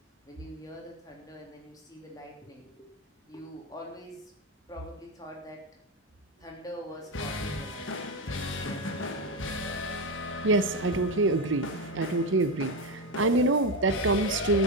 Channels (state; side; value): normal; both; correlation 0.12